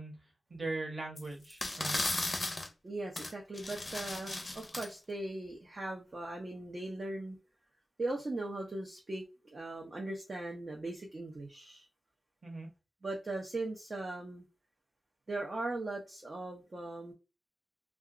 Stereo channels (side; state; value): both; normal; correlation 0.91